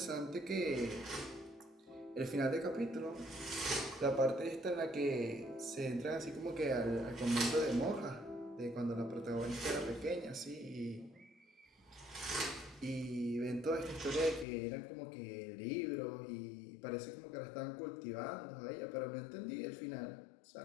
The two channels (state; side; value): drops out; right; at 14.5 s